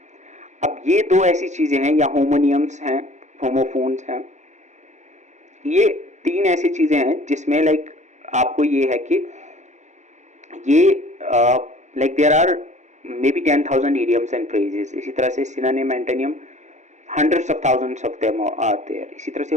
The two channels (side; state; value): left; late; 0.34 ms